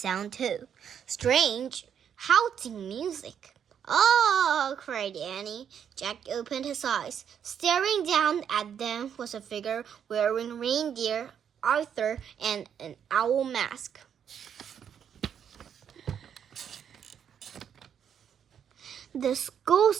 too. Strange, howling music. Oh, cried Annie. Jack opened his eyes. Staring down at them was a figure wearing reindeer, Arthur, and an owl mask. The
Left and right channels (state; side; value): quieter; left; 8.3 dB